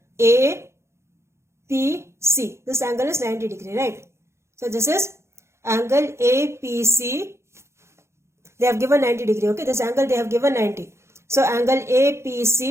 APC. This angle is 90 degree, right? So this is angle APC. They have given 90 degree. Okay, this angle they have given 90. So angle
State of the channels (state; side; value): late; left; 0.13 ms